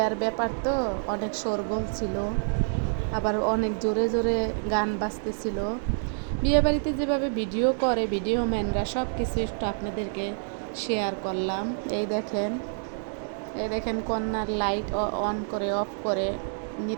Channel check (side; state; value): left; silent; 60 dB below the other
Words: ব্যাপার তো, অনেক শোরগোল ছিল, আবার অনেক জোরে জোরে গান বাজতেছিল। বিয়ে বাড়িতে যেভাবে ভিডিও করে ভিডিও ম্যানরা, সব কিছু একটু আপনাদেরকে শেয়ার করলাম। এই দেখেন কন্যার লাইট অন করে অফ করে